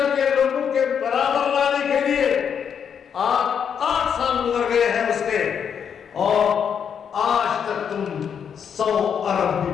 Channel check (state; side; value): quieter; right; 7.6 dB